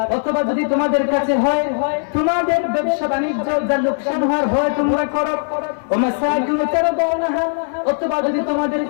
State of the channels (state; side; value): silent; right; 65 dB below the other